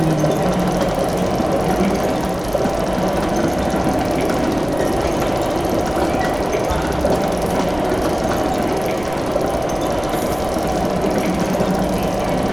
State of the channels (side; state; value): right; noise; rumble, 16 dB below the sound